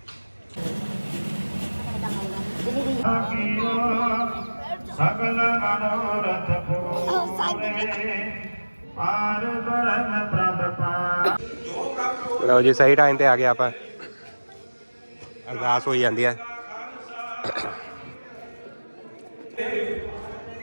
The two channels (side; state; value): both; inverted; correlation -1.00